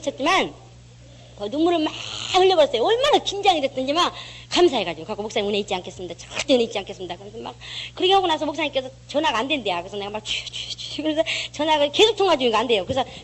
눈물을 막 흘려버렸어요. 얼마나 긴장이 됐든지 막 감사해가지고 갖고 목사님 은혜 잊지 않겠습니다. 절대 은혜 잊지 않겠습니다. 그래서 막 그렇게 하고 나서 목사님께서 전화가 안 된대요. 그래서 내가 막 그래서 전화가 계속 통화 중이가 안 돼요. 그래서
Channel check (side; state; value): both; identical; correlation 1.00